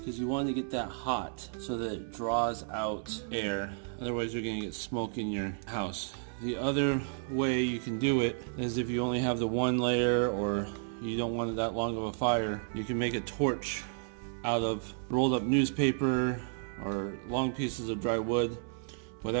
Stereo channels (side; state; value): left; silent; 56 dB below the other